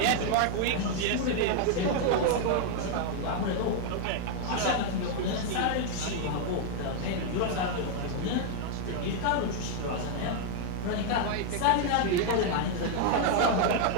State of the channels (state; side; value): different; both; correlation 0.00